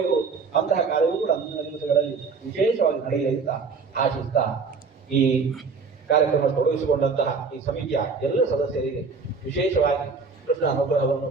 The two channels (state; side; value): quieter; left; 4.9 dB